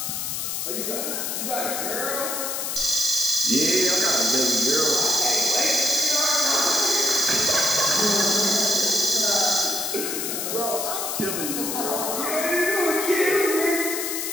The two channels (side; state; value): left; noise; hiss, 3 dB below the sound